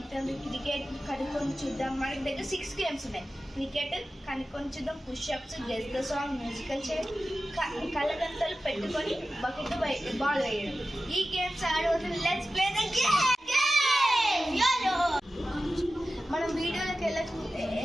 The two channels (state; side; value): normal; both; correlation 0.94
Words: క్రికెట్ కనుక్కొని చూద్దాం. మనకి దగ్గర 6 గేమ్స్ ఉన్నాయి. క్రికెట్ కనుక్కొని చూద్దాం, pushups, guess the song, musical chair, కళ్ళగంతలు పెట్టుకొని బకెట్ బాల్ వేయడం. ఈ గేమ్స్ ఆడబోతున్నాం. Let's play the game. మనం వీడియోలోకి